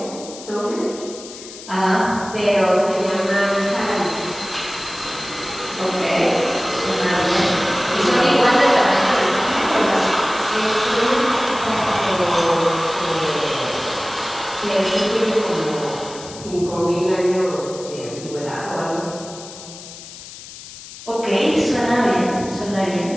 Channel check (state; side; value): noise; left; hiss, 15 dB below the sound